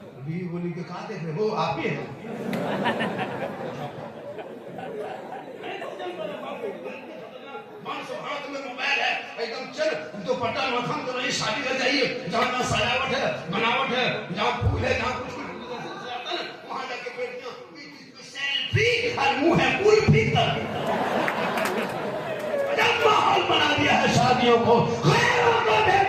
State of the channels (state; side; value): identical; both; correlation 1.00